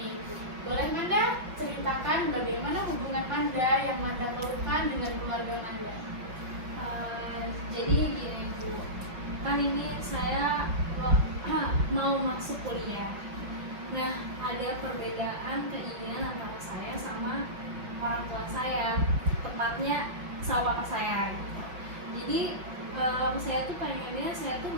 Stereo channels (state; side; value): late; left; 5.5 ms